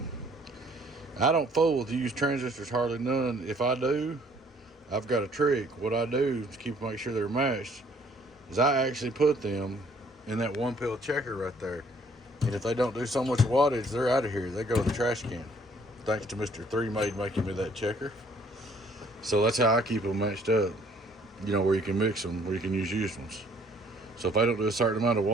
I don't fool with used transistors hardly none. If I do, I've got a trick. What I do to make sure they're matched is I actually put them in that one pill checker right there. And if they don't do so much wattage, they're out of here. They go to the trash can. Thanks to Mr. 3Made making me that checker. So that's how I keep them matched up. Where you can mix them, where you can use used ones. So if I don't do a certain amount of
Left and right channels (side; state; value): both; normal; correlation 0.61